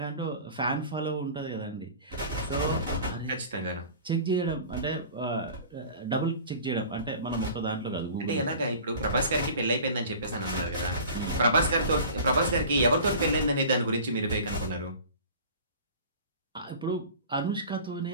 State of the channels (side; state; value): both; inverted; correlation -0.41